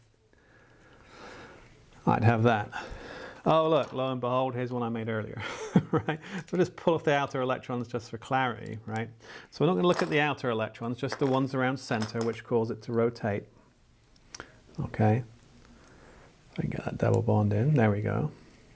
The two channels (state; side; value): identical; both; correlation 1.00